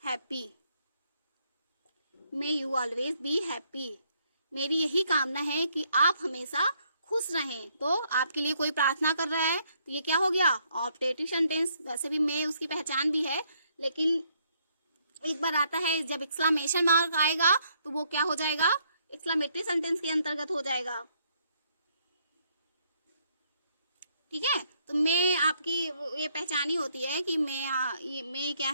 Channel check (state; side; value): inverted; both; correlation -0.70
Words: happy, may you always be happy, मेरी यही कामना है कि आप हमेशा खुश रहें। तो आपके लिए कोई प्रार्थना कर रहा है तो ये क्या हो गया, ऑप्टेटिव सेंटेंस। वैसे भी मे उसकी पहचान भी है, लेकिन एक बार आता है जब एक्सक्लेमेशन मार्क आएगा तो वो क्या हो जाएगा, एक्सक्लेमेटरी सेंटेंस के अंतर्गत हो जाएगा, ठीक है। तो मे आपकी ये पहचान ही होती है कि मे क्या